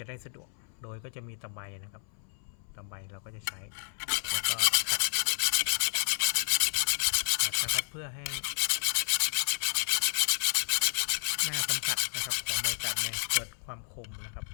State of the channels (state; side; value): silent; right; 57 dB below the other